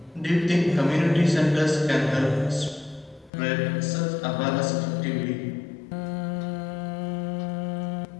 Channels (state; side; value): drops out; right; at 3.3 s